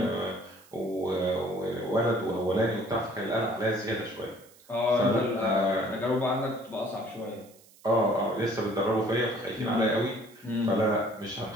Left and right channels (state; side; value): noise; right; hiss, 26 dB below the sound